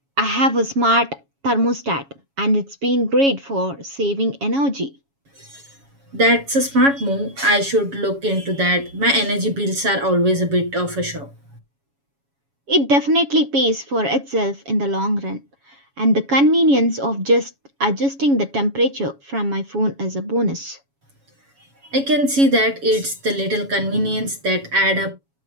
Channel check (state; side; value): late; left; 7.2 ms